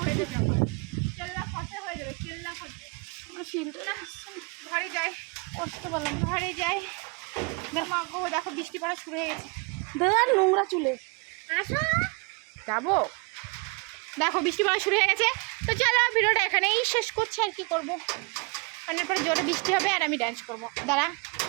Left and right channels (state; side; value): quieter; left; 30.6 dB